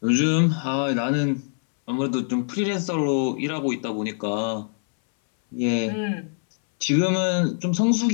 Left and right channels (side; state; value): right; silent; 63 dB below the other